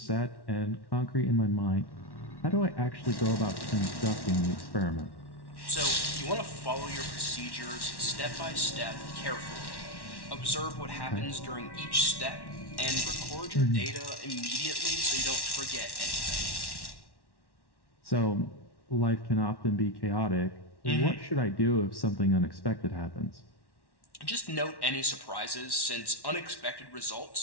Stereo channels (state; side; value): late; right; 1.1 ms